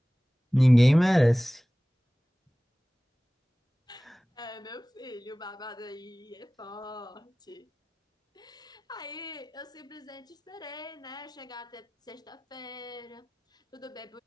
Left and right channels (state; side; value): normal; both; correlation 0.98